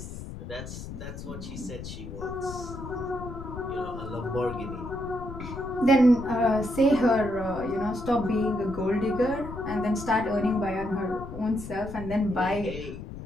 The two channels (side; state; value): left; noise; rumble, 10 dB below the sound